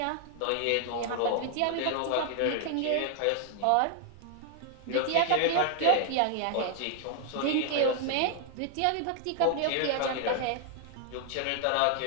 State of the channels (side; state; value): both; different; correlation 0.00